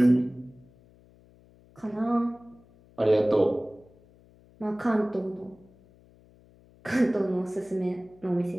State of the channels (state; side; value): noise; left; hum, 28 dB below the sound